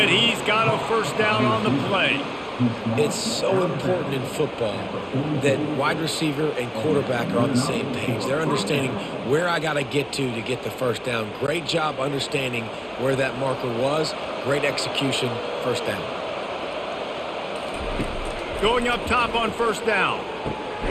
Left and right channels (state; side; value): identical; both; correlation 1.00